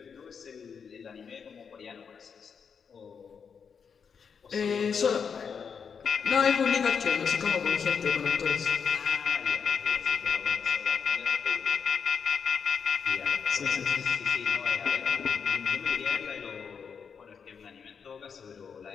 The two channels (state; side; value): quieter; right; 6.4 dB